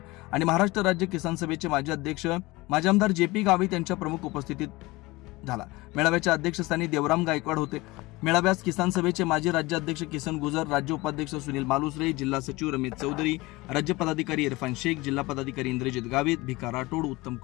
आणि महाराष्ट्र राज्य किसान सभेचे माजी अध्यक्ष माजी आमदार JP गावित यांच्या प्रमुख उपस्थितीत झाला। मेळाव्याच्या अध्यक्षस्थानी देवराम गायकवाड होते। मेळाव्यास किसान सभेचे माजी राज्याध्यक्ष किसन गुजर, राज्य उपाध्यक्ष सुनील मालुसरे, जिल्हा सचिव रमेश चौधरी, राज्य पदाधिकारी इरफान शेख, जिल्हा पदाधिकारी इंद्रजित गावित, भिका राठोड, उत्तम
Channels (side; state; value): right; quieter; 21.6 dB